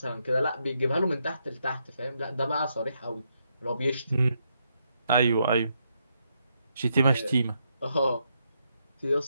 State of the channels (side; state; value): both; inverted; correlation -0.79